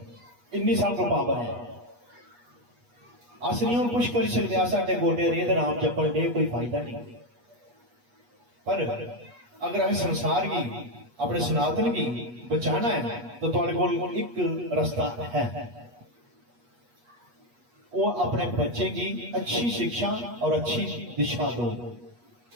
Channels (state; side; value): late; left; 8.3 ms